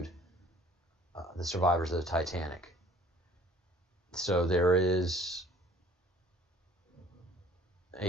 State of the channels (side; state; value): both; normal; correlation 0.52